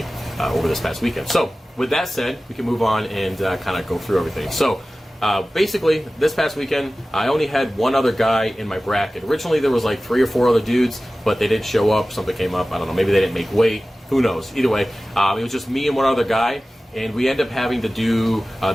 over this past weekend. So with that said, we can move on and kind of go through everything. So basically, this past weekend, I only had one other guy in my bracket. Originally, there was like 3 or 4 other dudes, but they didn't show up. Something came up. I don't know. Maybe they didn't make weight. Who knows? Either way, it was just me and one other guy, and we ended up having to do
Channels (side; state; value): both; normal; correlation 0.96